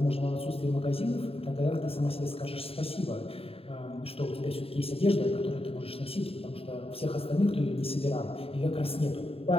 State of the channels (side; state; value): right; late; 0.28 ms